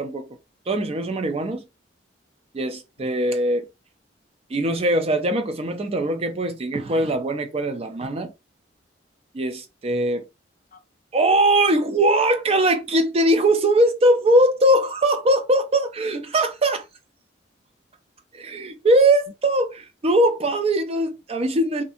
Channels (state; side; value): normal; both; correlation 0.28